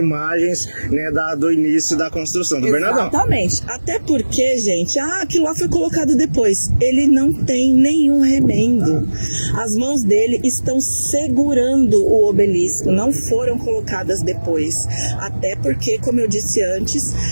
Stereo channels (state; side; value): inverted; both; correlation -1.00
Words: né, do início da construção do Bernardão. Exatamente. Até porque, gente, aquilo lá foi colocado depois. Ele não tem nenhum remendo. As mãos dele estão segurando o obelisco, não foram colocadas depois. Até porque, como eu disse antes,